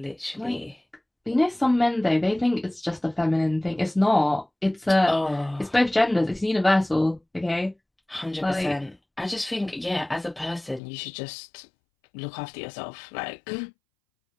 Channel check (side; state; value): right; drops out; at 10.8 s